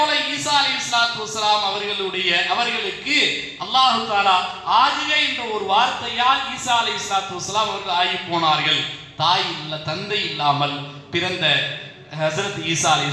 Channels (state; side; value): identical; both; correlation 1.00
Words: ஈசா அலைஹிஸ்ஸலாத்து வஸ்ஸலாம் அவர்களுக்கு அல்லாஹ் தஆலா ஆகுக என்ற ஒரு வார்த்தையால் ஈசா அலைஹிஸ்ஸலாத்து வஸ்ஸலாம் அவர்கள் ஆகி போனார்கள். தாய் இல்ல, தந்தை இல்லாமல் பிறந்த ஹஸரத் ஈசா